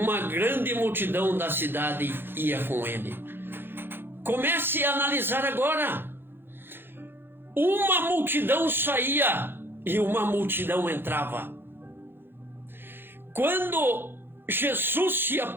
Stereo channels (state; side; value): late; left; 0.10 ms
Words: grande multidão da cidade ia com ele. Comece a analisar agora. Uma multidão saía e uma multidão entrava. Quando Jesus se